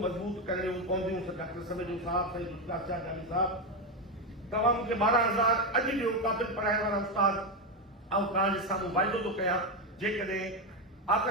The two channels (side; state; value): both; normal; correlation 0.10